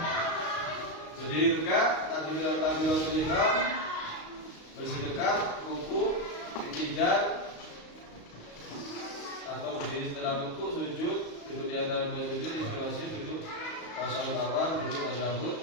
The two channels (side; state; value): right; late; 35 ms